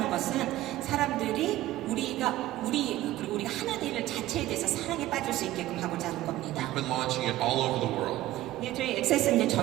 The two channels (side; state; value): left; quieter; 15.5 dB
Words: 것은 사람들이 그리고 우리가 하는 일 자체에 대해서 사랑에 빠질 수 있게끔 하고자 하는 겁니다. We've been launching it all over the world. 네, 저희 액세스는 이제